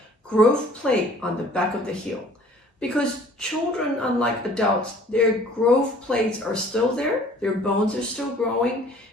growth plate on the back of the heel. Because children, unlike adults, their growth plates are still there, their bones are still growing.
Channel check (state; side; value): normal; both; correlation 0.53